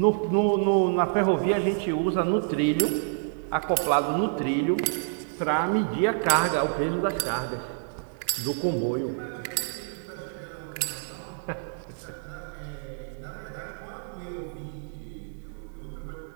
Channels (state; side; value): silent; left; digital silence